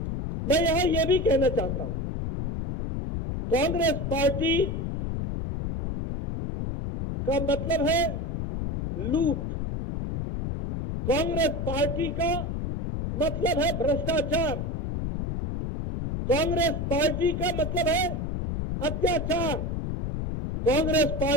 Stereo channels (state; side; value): noise; left; rumble, 3 dB below the sound